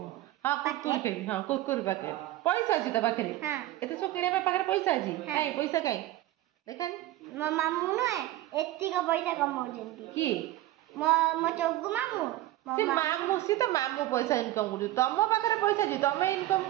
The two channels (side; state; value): left; quieter; 15.6 dB